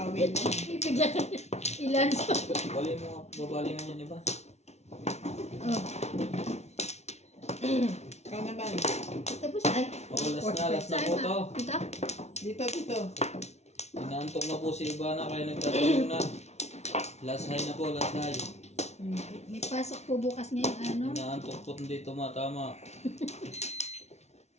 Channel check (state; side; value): late; right; 0.32 ms